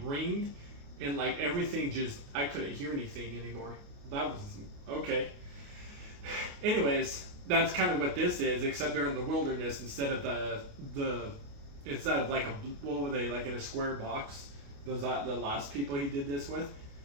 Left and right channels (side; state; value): left; late; 28 ms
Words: and like everything just, I couldn't hear anything anymore. That was, okay. Anyways, that's kind of what this is, except they're in the wilderness instead of instead of like what were they, like in a square box? Those are the last people he did this with.